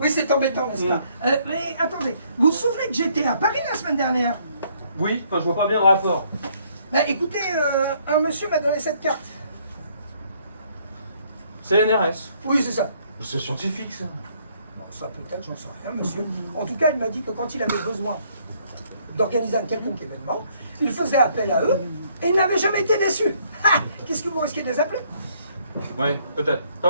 c'est embêtant, n'est-ce pas? Mais attendez, vous vous souvenez que j'étais à Paris la semaine dernière? Oui, enfin je vois pas bien le rapport. Bah écoutez, un monsieur m'a donné cette carte. C'est l'NRS. Oui, c'est ça. C'est scientifique ça. Bon, ça peut-être, j'en sais rien, monsieur. En tout cas, il m'a dit que quand il avait besoin d'organiser un quelconque événement, il faisait appel à eux et il n'avait jamais été déçu. Ah, qu'est-ce que vous risquez de les appeler? Ouais, peut-être.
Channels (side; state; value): both; inverted; correlation -0.66